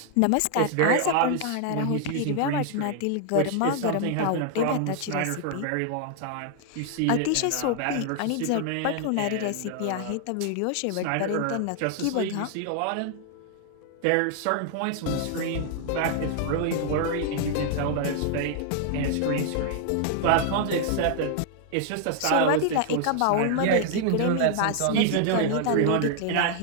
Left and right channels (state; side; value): different; both; correlation 0.00